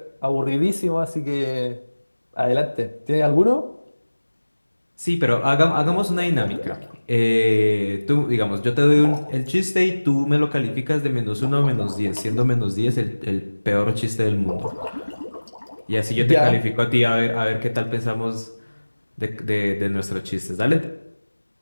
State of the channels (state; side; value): inverted; both; correlation -1.00